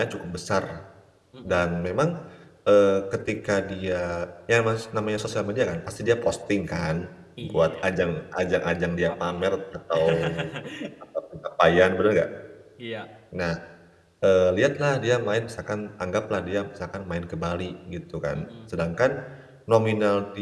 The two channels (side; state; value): both; identical; correlation 1.00